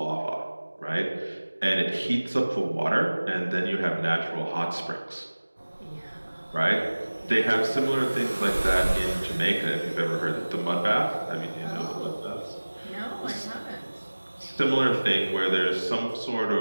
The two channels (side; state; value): both; inverted; correlation -1.00